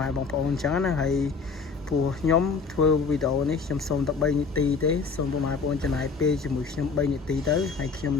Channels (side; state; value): right; quieter; 5.0 dB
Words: ៉ែបងប្អូនអញ្ចឹងណាហើយព្រោះខ្ញុំធ្វើវីដេអូនេះខ្ញុំសូមតែ3នាទីទេសូមពុកម៉ែបងប្អូនចំណាយពេលជាមួយខ្ញុំ3នាទីទៅហើយខ្ញុំ